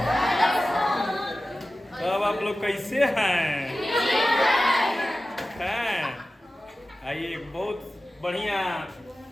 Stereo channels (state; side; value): normal; both; correlation 0.95